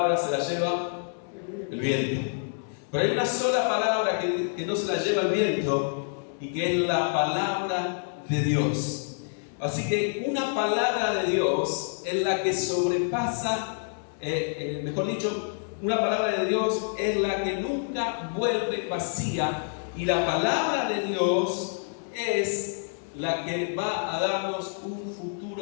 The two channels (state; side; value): silent; right; digital silence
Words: se las lleva el viento. Pero hay una sola palabra que no se la lleva el viento y que es la palabra de Dios. Así que una palabra de Dios es la que sobrepasa, mejor dicho, una palabra de Dios es la que nunca vuelve vacía, y la palabra de Dios es la que va a darnos un